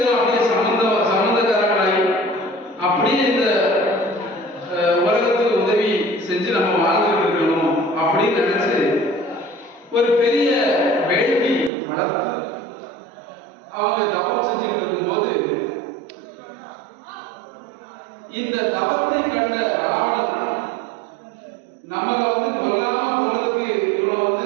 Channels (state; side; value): drops out; left; at 11.7 s